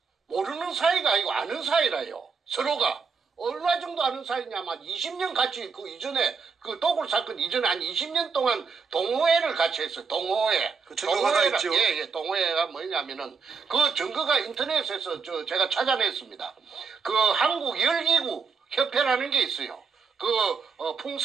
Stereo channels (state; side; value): quieter; left; 5.4 dB